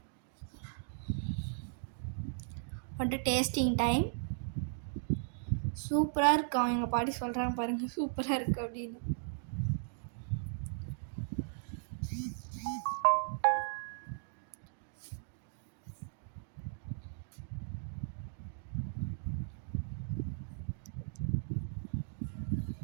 வந்துட்டு டேஸ்டிங் டைம். சூப்பராக இருக்கும். எங்கள் பாட்டி சொல்கிறாங்க பாருங்கள், சூப்பராக இருக்குது அப்படின்னு.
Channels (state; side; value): silent; left; digital silence